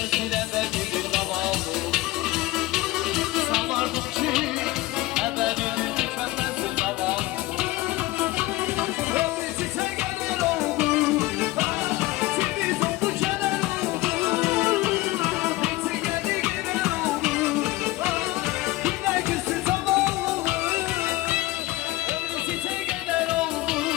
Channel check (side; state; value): right; quieter; 18.7 dB